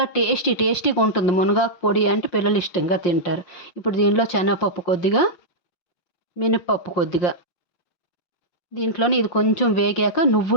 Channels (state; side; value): late; right; 5.7 ms